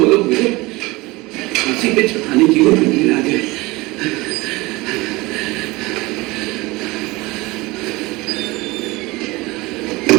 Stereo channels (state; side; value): quieter; left; 22.1 dB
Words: लोग मुझे फांसी पे चढ़ाने की ओर आ गए।